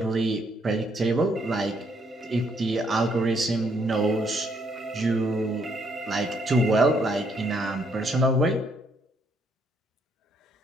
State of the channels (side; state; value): both; normal; correlation 0.71